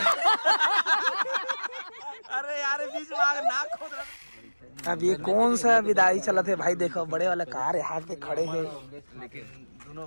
अरे यार बीच में आग नाक खोद रहा। अब ये कौन सा विदाई चला थे भाई, देखो बड़े वाला कार यहाँ के खड़े हैं। लेकिन दोनों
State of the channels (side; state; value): both; inverted; correlation -1.00